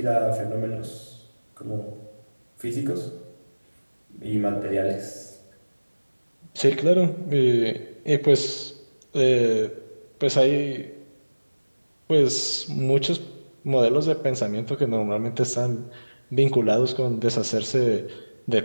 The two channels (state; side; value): inverted; both; correlation -1.00